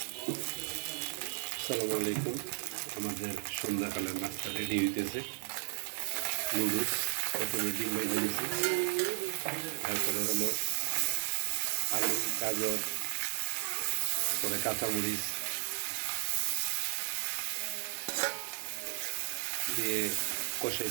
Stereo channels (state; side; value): silent; left; digital silence